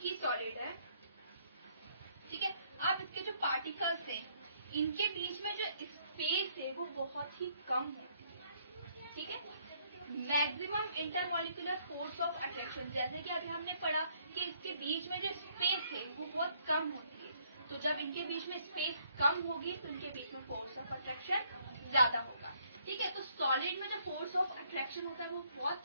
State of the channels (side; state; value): both; inverted; correlation -0.67